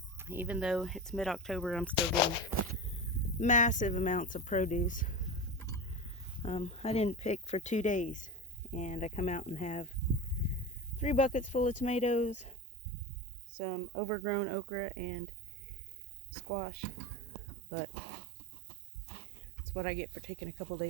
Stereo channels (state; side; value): drops out; left; at 12.6 s